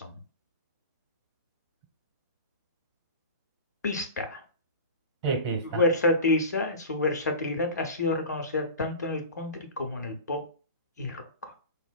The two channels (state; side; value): inverted; both; correlation -0.33